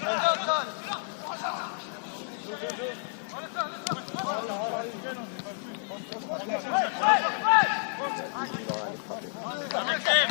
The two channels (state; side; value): silent; right; digital silence